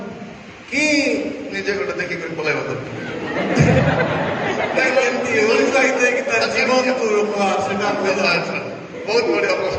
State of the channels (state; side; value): identical; both; correlation 1.00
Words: କି ନିଜେ ଗୋଟେ ଦେଖିକରି ପଳାଇବା ଦରକାର? ଏମିତି ଉତ୍ସାହିତ ହେଇକି ତାର ଜୀବନକୁ ରୋକବା, ସେଟା ବହୁତ ବଢିଆ